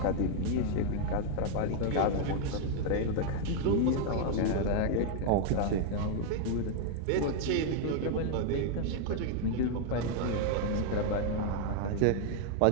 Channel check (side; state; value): both; different; correlation 0.00